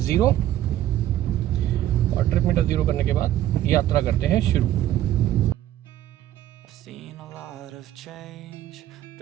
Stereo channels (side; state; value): left; quieter; 12.9 dB